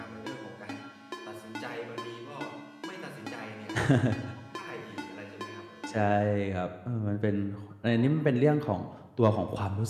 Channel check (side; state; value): both; identical; correlation 1.00